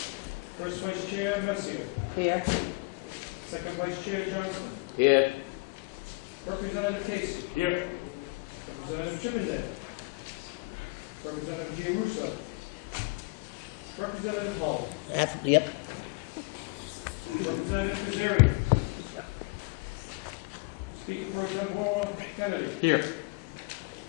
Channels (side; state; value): right; quieter; 27.8 dB